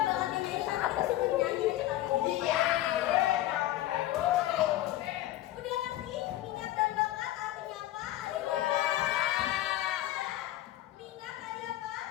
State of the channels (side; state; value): right; quieter; 14.8 dB